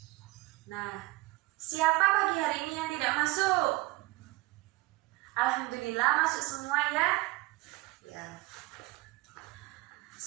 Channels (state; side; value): quieter; left; 21.4 dB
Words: Nah, siapa pagi hari ini yang tidak masuk? Alhamdulillah masuk semua ya. Ya.